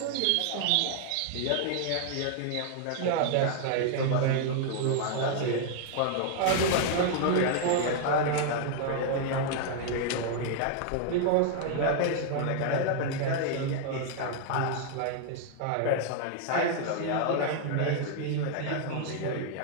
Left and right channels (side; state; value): both; different; correlation 0.00